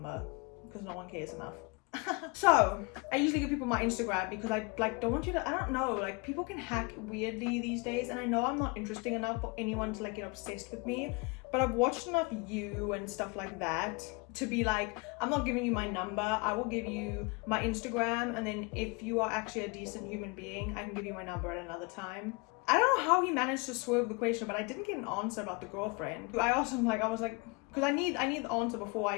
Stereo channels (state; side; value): quieter; right; 28.5 dB